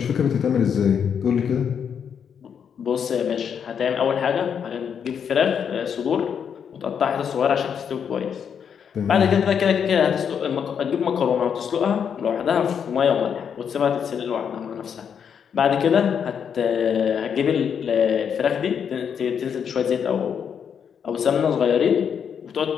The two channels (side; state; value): right; quieter; 7.5 dB